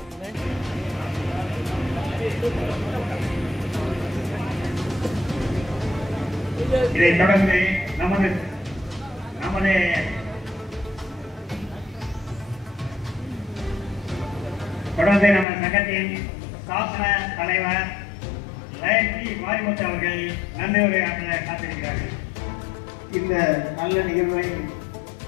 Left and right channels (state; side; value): drops out; right; at 15.5 s